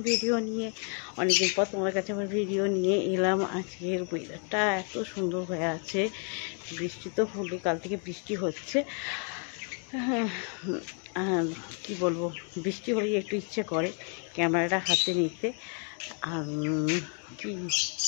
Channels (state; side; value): quieter; right; 38.4 dB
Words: ভিডিও নিয়ে। অনেকদিন পর তোমাদের কাছে আমার ভিডিও নিয়ে এলাম। আজকের ওয়েদারটা এত সুন্দর হয়ে আছে, বৃষ্টি তো হলে, কাল থেকে বৃষ্টি হচ্ছে। আর কি বলবো, বৃষ্টি হলেই একটু ইচ্ছে করে ক্যামেরাটা হাতে নিতে। আর কি,